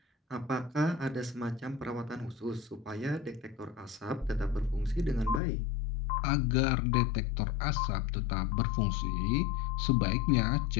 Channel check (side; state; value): right; drops out; at 5.4 s